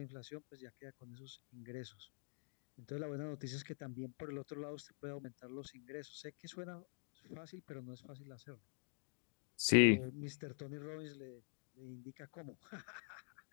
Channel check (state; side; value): silent; right; digital silence